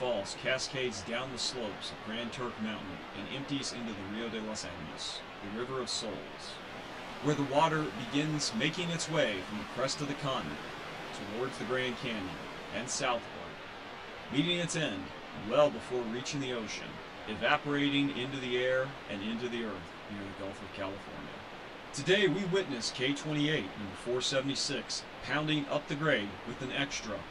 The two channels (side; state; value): both; identical; correlation 1.00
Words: cascades down the slopes of Grand Turk Mountain and empties into the Rio de los Animas, the River of Souls, where the water begins making its way from the crest of the continent towards the Grand Canyon and southward, meeting its end well before reaching the ocean, evaporating into the air and into the earth near the Gulf of California. Today we witness K-28 number 476 pounding up the grade with an extra,